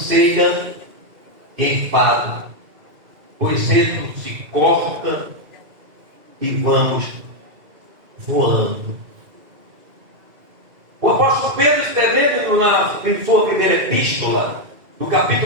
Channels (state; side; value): late; left; 2.3 ms